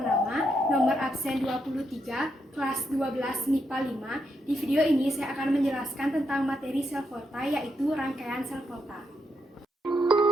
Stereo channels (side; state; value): both; normal; correlation 0.81